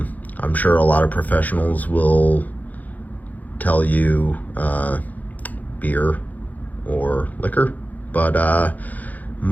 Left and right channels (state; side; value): late; right; 0.080 ms